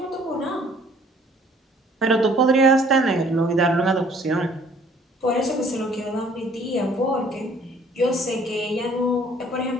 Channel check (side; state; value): both; normal; correlation 0.57